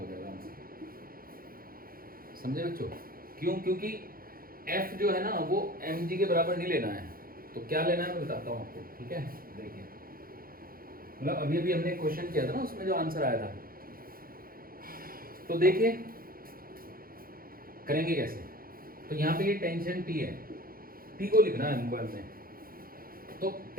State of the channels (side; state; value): left; late; 0.42 ms